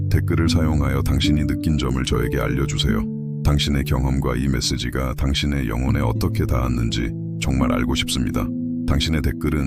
댓글을 사용하여 당신이 느낀 점을 저에게 알려주세요. 당신의 경험과 이 메시지가 당신의 영혼에 어떻게 닿았는지 정말 알고 싶습니다. 당신의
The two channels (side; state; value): both; identical; correlation 1.00